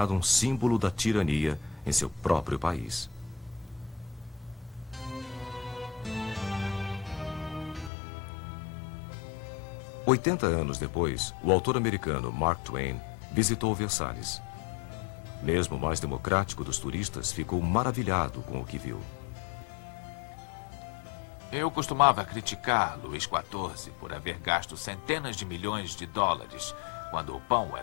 um símbolo da tirania em seu próprio país. Oitenta anos depois, o autor americano Mark Twain visitou Versalhes. Mesmo o mais democrático dos turistas ficou maravilhado com o que viu. Eu costumava criticar Luís XIV por haver gasto centenas de milhões de dólares quando o pão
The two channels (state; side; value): drops out; right; at 7.9 s